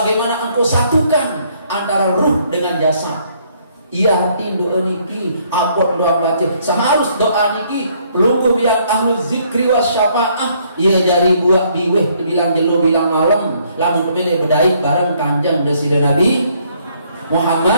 engkau satukan antara ruh dengan jasad. Ia hati doa niki apot doa baca seharus doa niki pelungguh yang ahlu zikri wa syafa'ah ia jari buat biweh bilang jelo bilang malam lamun kemene bedai bareng kanjeng desida Nabi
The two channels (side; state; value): both; inverted; correlation -0.67